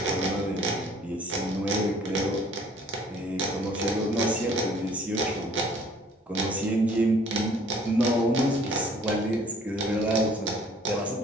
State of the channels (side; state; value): both; normal; correlation 0.56